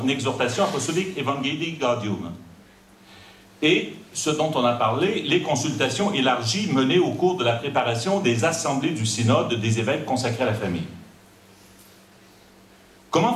exhortation apostolique Evangelii Gaudium. Et, ce dont on a parlé, les consultations élargies menées au cours de la préparation des assemblées du synode des évêques consacrés à la famille. Comment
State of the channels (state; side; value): identical; both; correlation 1.00